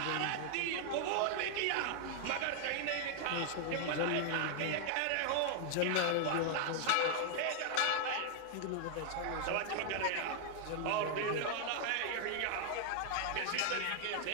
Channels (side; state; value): both; different; correlation 0.00